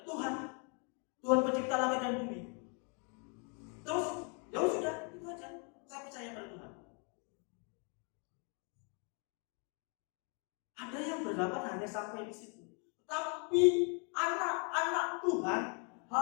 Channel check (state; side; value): quieter; right; 37.5 dB